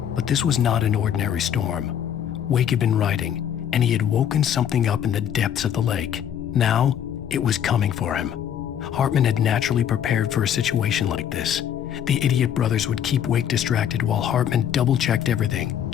But this was not an ordinary storm. Wake had been writing, and he had woken something up in the depths of the lake. Now, it was coming for him. Hartman had naturally prepared for a situation like this. The idiot brothers would keep Wake distracted while Hartman double-checked everything,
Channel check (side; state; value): right; quieter; 9.4 dB